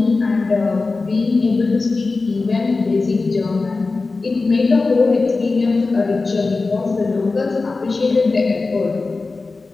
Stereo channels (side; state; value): right; quieter; 3.8 dB